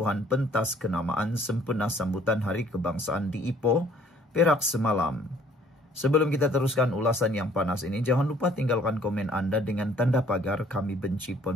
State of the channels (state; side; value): normal; both; correlation 0.59